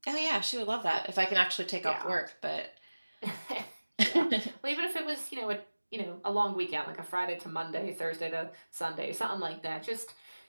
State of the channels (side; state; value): both; inverted; correlation -1.00